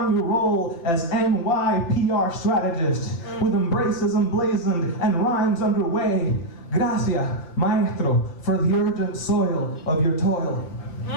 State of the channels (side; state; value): right; late; 5.9 ms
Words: your role as NYPR strategist, with embraces emblazoned and rhymes underway. Gracias, maestro, for the urgent soil of your toil.